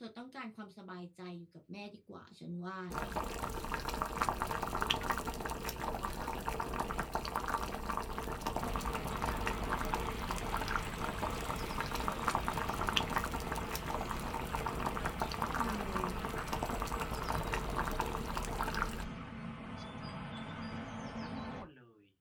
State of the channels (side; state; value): both; identical; correlation 1.00